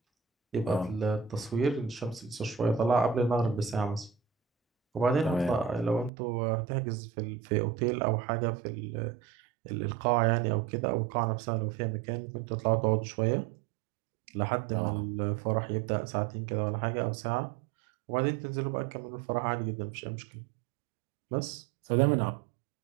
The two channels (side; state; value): left; drops out; at 6.1 s